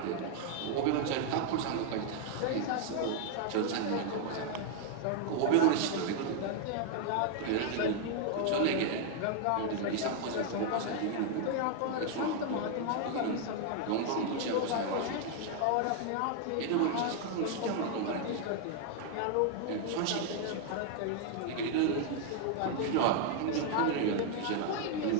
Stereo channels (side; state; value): both; different; correlation 0.00